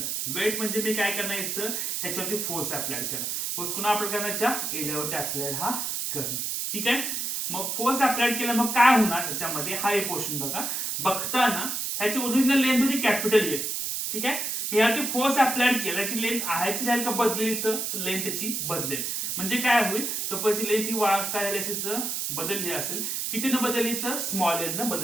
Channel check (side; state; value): right; noise; hiss, 2 dB below the sound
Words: वेट म्हणजे मी काय करणार इथं ह्याच्यावरती फोर्स अप्लाय करणार. फोर्स कुणा अप्लाय करण्याच्या एरियावरती अप्लाय हा करणं. ठीक आहे, मग फोर्स अप्लाय केला मग काय होणार ह्याच्यामध्ये, हा एक पोर्शन बघा, बघताना ह्याची ओरिजिनल लेंथ होती कॅपिटल एल. ठीक आहे, मी यावरती फोर्स अप्लाय केला, याची लेंथ आहेच राहील का बदलेल, तर लेंथ त्याची बदलेल. म्हणजे काय होईल, सपोज लेंथ ही काय झाली असेल तर बदलली असेल, कितीनं बदलली तर स्मॉल एल न